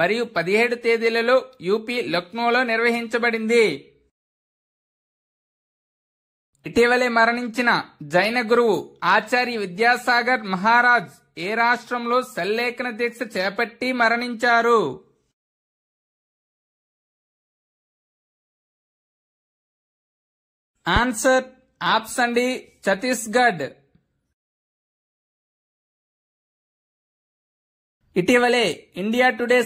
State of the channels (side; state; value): both; identical; correlation 1.00